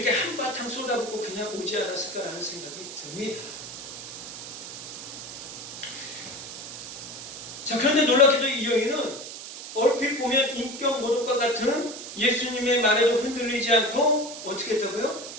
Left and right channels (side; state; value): right; noise; hiss, 10 dB below the sound